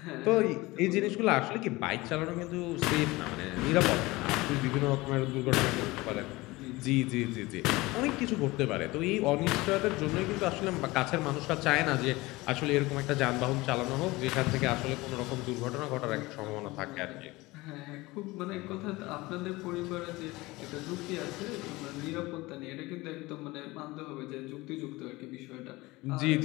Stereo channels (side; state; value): right; quieter; 21.1 dB